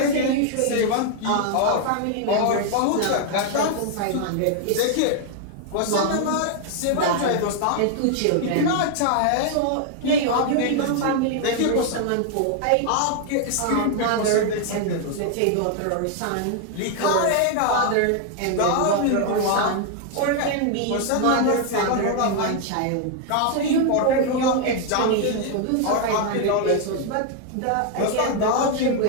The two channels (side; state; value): both; different; correlation 0.00